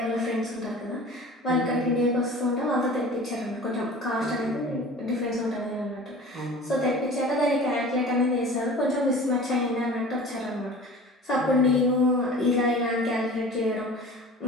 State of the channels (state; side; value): normal; both; correlation 0.41